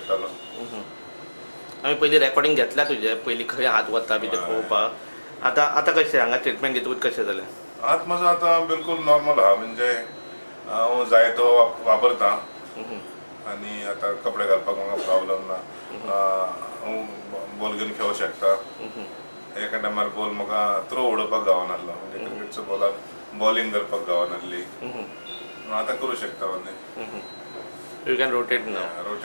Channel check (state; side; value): inverted; both; correlation -1.00